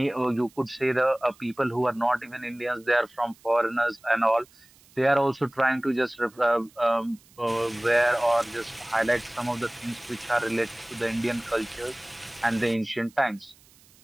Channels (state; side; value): noise; right; hiss, 28 dB below the sound